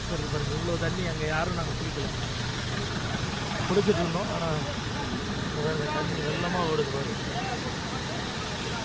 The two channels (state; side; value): identical; both; correlation 1.00